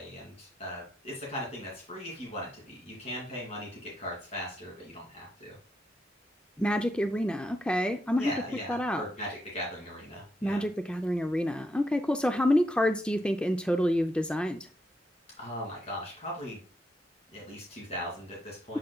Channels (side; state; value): both; normal; correlation 0.81